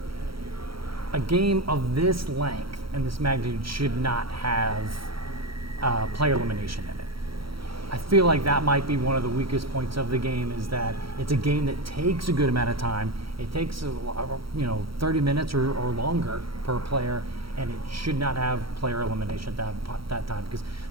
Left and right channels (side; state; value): left; late; 0.75 ms